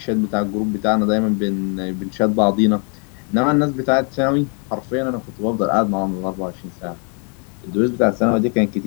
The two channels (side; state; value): right; quieter; 39.2 dB